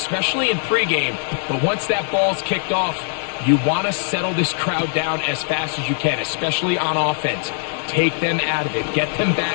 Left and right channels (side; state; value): right; silent; digital silence